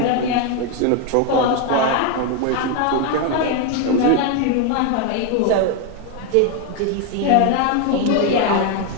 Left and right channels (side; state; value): both; different; correlation 0.01